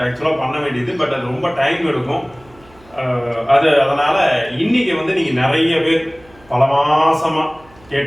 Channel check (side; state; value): right; noise; hum, 27 dB below the sound